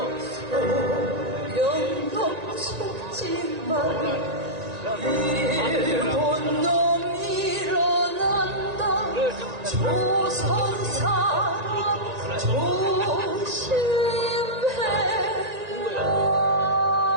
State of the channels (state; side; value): late; left; 1.9 ms